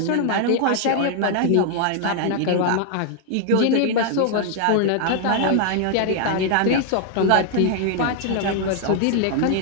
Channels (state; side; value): different; both; correlation 0.00